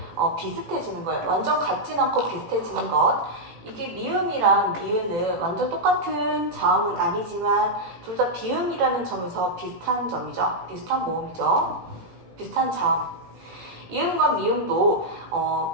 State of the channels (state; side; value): late; left; 18 ms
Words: 비슷해지는 거예요. 완전 같진 않고 비슷해지는 것. 이게 미음이랑 니은은 완전 똑같은 자음은 아니지만 둘 다 비음이라는 점에서 비슷한 점이죠. 비슷한 모음이죠. 비슷한 자음. 이음과 미음도